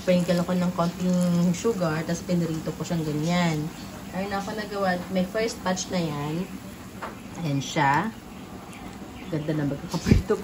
ako ng konting sugar. Tapos pinirito ko siyang ganyan. Ayun ako nagawa. May first batch na yan. Ayan siya. Ganda na magkakaprito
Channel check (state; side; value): identical; both; correlation 1.00